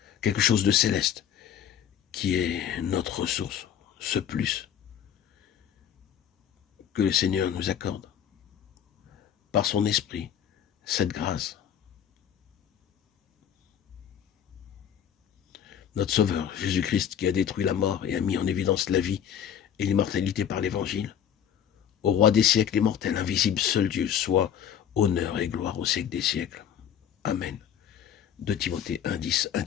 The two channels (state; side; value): quieter; right; 9.2 dB